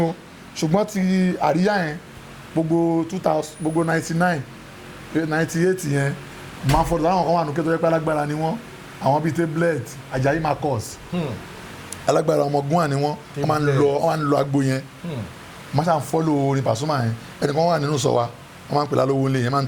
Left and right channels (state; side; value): identical; both; correlation 1.00